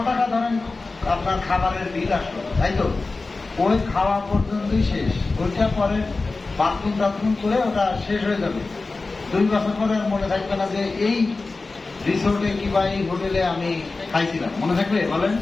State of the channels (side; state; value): right; quieter; 3.6 dB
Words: টাকা ধরেন আপনার খাবারের বিল আসলো, তাই তো? ওই খাওয়া পর্যন্তই শেষ, ওইটা পরে বাথরুম টাথরুম করে ওটা শেষ হয়ে যাবে। 2 বছর পরে আর মনে থাকবে না যে এই রিসোর্টে কিংবা এই হোটেলে আমি খাইছিলাম, মনে থাকবে বলেন?